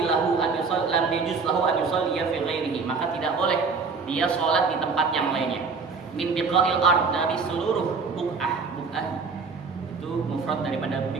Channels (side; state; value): left; quieter; 4.8 dB